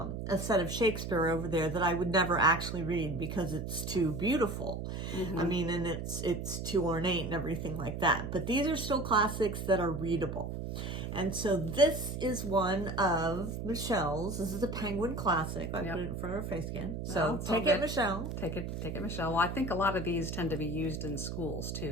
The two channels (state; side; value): noise; right; hum, 5 dB below the sound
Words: set of Shakespeare over there that I would never actually read because it's too beautiful. I mean, and it's too ornate and everything like that. But these are still classics that are readable. And so this is one of Michelle's. This is a Penguin classic. I put it in front of her face again. So take it, Michelle. Take it, Michelle. Well, I think a lot of these tend to be used in schools